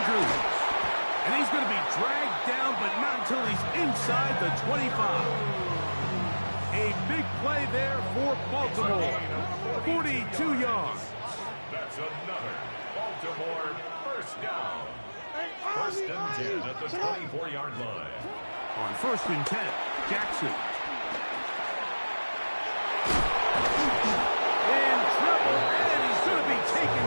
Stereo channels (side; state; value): both; inverted; correlation -1.00